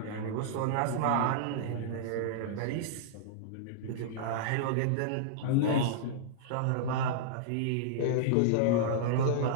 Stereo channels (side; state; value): both; different; correlation -0.02